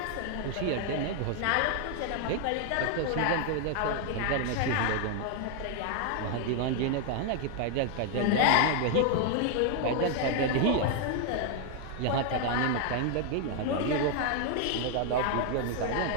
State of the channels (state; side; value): different; both; correlation 0.00